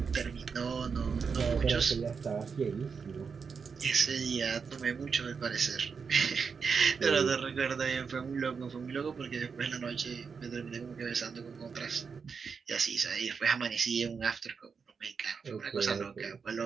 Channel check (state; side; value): quieter; left; 5.7 dB